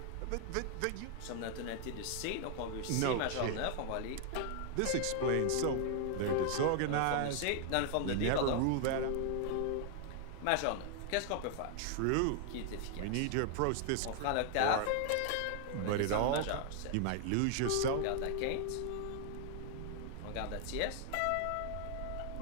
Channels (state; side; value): different; both; correlation 0.00